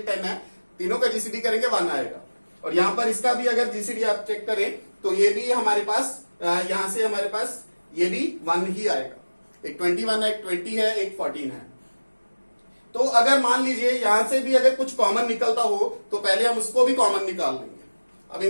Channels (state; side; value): inverted; both; correlation -1.00